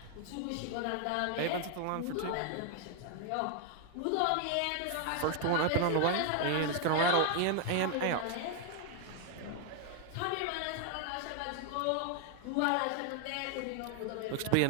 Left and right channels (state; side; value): different; both; correlation 0.00